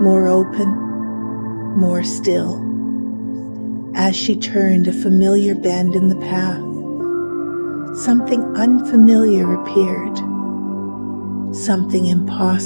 more open, more still. As she turned a familiar bend in the path, something unfamiliar appeared, something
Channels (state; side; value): inverted; both; correlation -1.00